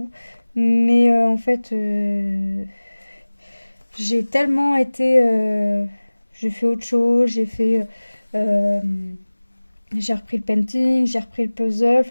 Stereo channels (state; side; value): inverted; both; correlation -1.00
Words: Mais en fait, j'ai tellement été... j'ai fait autre chose, euh, j'ai repris le painting, j'ai repris le puzzle,